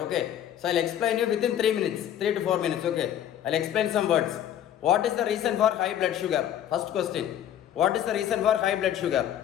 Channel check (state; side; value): quieter; right; 10.7 dB